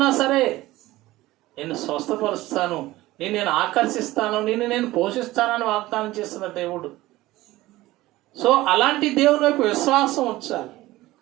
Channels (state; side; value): quieter; left; 17.6 dB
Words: సరే నేను స్వస్థపరుస్తాను, నేను ఆకర్షిస్తాను, నేను పోషిస్తానని వాగ్దానం చేస్తున్న దేవుడు. సో అలాంటి దేవుని వైపు విశ్వాసం ఉంచాలి.